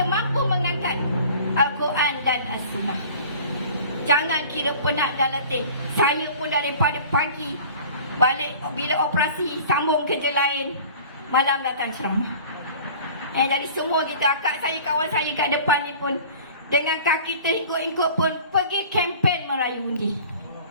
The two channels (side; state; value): both; inverted; correlation -0.44